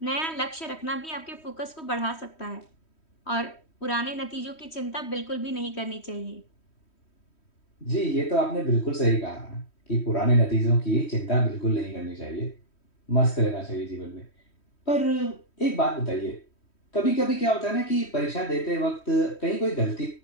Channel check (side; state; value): right; late; 3.1 ms